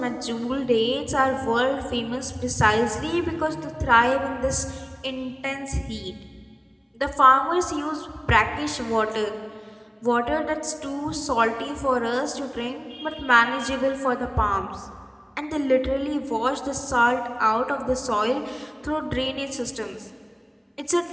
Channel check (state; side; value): identical; both; correlation 1.00